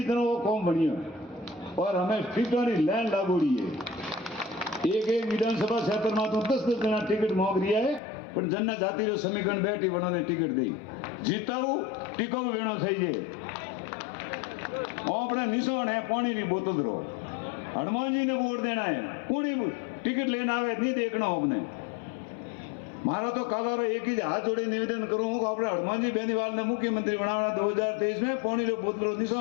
तरह वो कौम बढ़िया और हमें सीटों की लाइन लागोड़ी है। एक विधानसभा क्षेत्र में तो 10-10 जना टिकट मांग रही है, पर जनने जाति रो समीकरण बैठी बनाने टिकट दी जीताऊ टिकाऊ वेणो चाहिए। अपने निशान है पानी की बोतल रो, हनुमान जी ने वोट देना है, पूरी टिकट लेना आवे नहीं देखना अपने। मारा तो कालारो एक ही हाथ जोड़े निवेदन करूँ अपने हनुमान जी बेनीवाल ने मुख्यमंत्री बनाना 2023 में पानी रो बोतल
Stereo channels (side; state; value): right; drops out; at 8.0 s